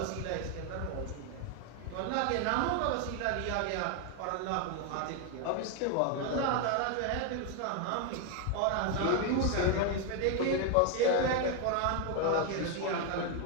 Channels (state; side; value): different; both; correlation 0.01